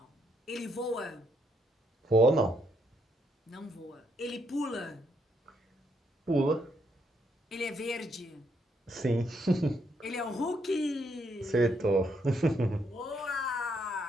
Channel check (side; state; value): both; normal; correlation 0.75